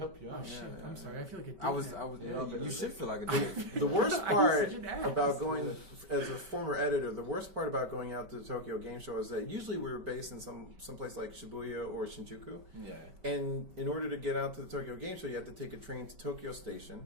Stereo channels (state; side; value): late; left; 5.2 ms